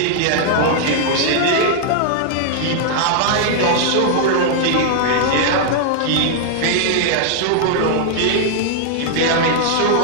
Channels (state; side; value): different; both; correlation -0.01